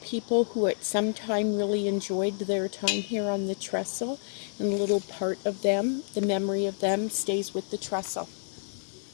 people who at some time really enjoyed their time here on the trestle, and a little part of them, the memory of them, stays with the trestle.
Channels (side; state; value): right; silent; digital silence